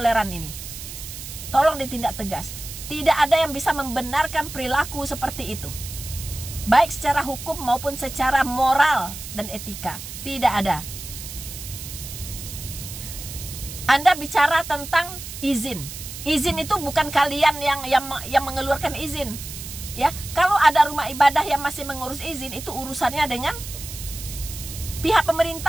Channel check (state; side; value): noise; right; hiss, 11 dB below the sound